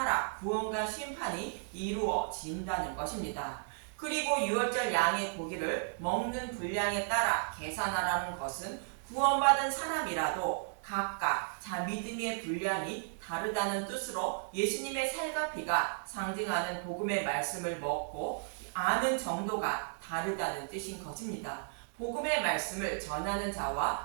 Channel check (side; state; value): left; silent; digital silence